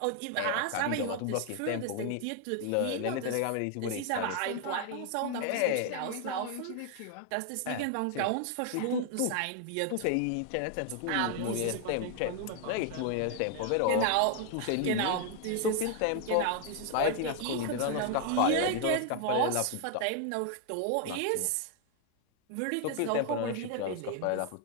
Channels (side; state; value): both; different; correlation 0.00